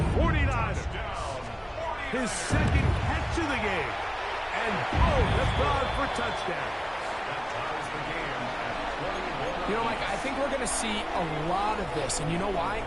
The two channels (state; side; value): identical; both; correlation 1.00